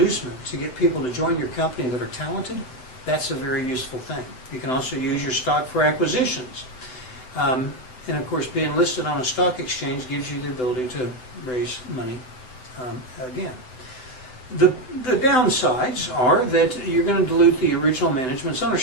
to get people to join your company that are talented, that's a very useful thing. You can also use your stock for acquisitions. And of course, being listed on a stock exchange gives you the ability to raise money again. The downsides are that you're going to dilute the original management's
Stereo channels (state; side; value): late; right; 7.9 ms